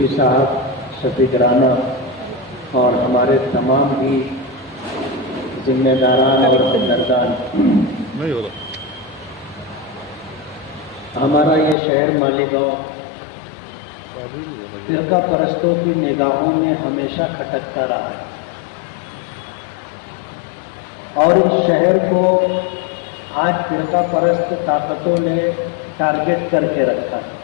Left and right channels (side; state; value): right; drops out; at 11.8 s